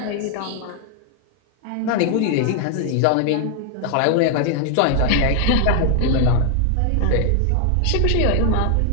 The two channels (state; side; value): different; both; correlation 0.00